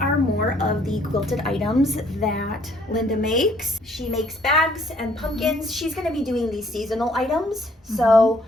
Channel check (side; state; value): both; normal; correlation 0.63